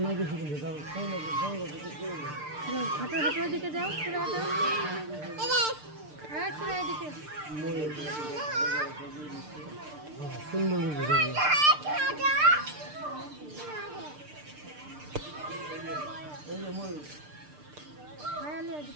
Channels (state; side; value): late; left; 6.7 ms